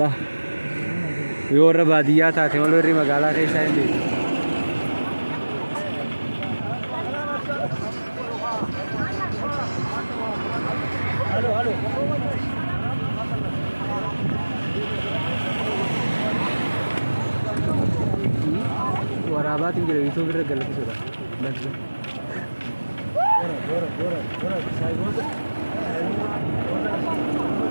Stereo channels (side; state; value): both; inverted; correlation -1.00